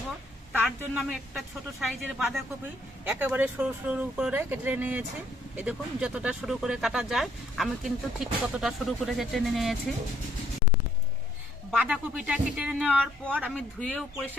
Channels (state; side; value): normal; both; correlation 0.66